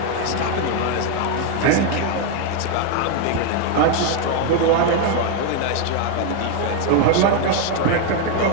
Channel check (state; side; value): different; both; correlation 0.01